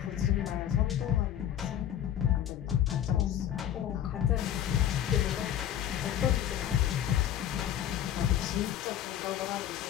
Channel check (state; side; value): quieter; right; 10.8 dB